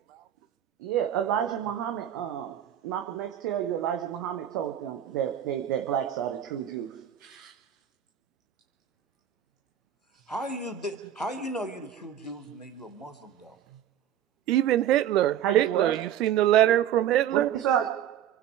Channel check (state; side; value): quieter; left; 10.4 dB